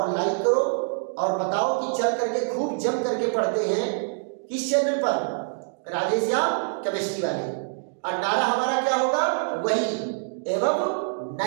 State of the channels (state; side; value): silent; left; digital silence